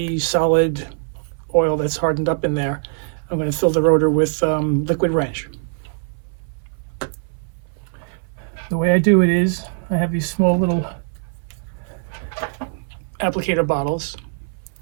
solid oil that's hardened up in there. I'm going to fill the rotor with liquid wrench. The way I do it is I have these small little applicator bottles,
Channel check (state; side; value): silent; left; 60 dB below the other